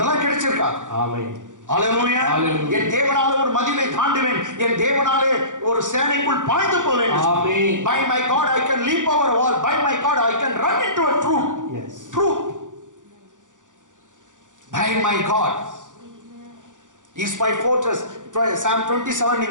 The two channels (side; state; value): left; late; 0.87 ms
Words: கிடைச்சிருக்கா. என் தேவனாலே ஒரு மதிலை தாண்டுவேன், என் தேவனாலே ஒரு சேனைக்குள் பாய்ந்து போவேன். By my God I can leap over a wall, by my God I can run into a troop. Troop. By my God is my fortress. Psalm 27